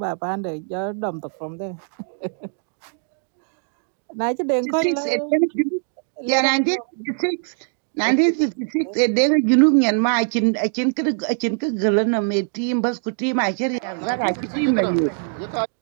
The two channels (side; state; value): left; silent; digital silence